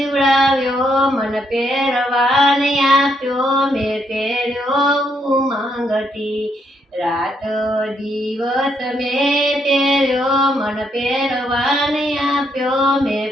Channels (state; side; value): normal; both; correlation 0.75